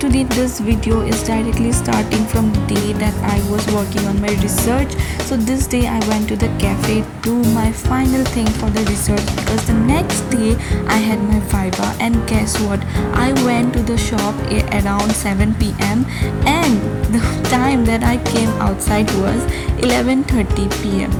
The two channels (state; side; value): identical; both; correlation 1.00